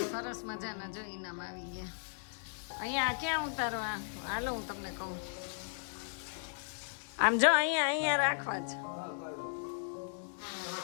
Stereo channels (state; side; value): silent; right; digital silence